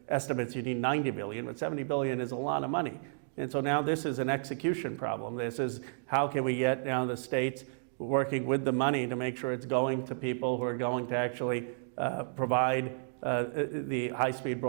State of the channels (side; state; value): left; silent; digital silence